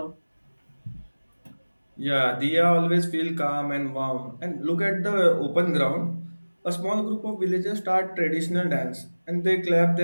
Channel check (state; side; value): inverted; both; correlation -1.00